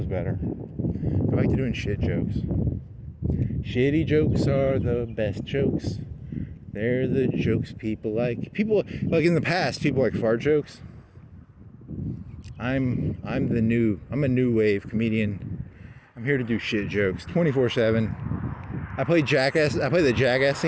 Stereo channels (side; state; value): both; identical; correlation 1.00